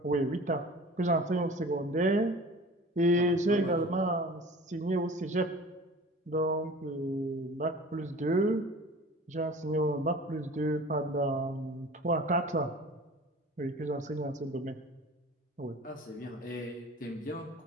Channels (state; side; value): normal; both; correlation 0.42